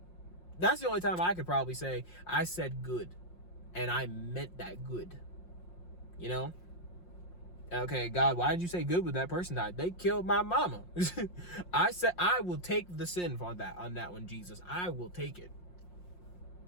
That's the only time I could probably say I said good. And I meant that good. Okay, God, why did you say good when that person died? They killed my mama. I said I will take the sin on that one, Jesus. I will take it.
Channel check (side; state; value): right; late; 5.6 ms